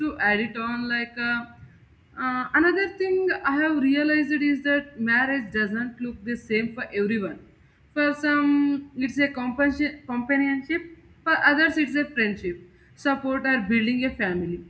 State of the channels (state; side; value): identical; both; correlation 1.00